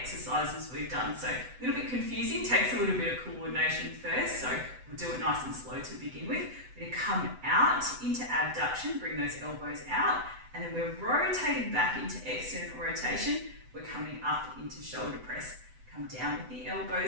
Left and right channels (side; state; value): left; late; 7.9 ms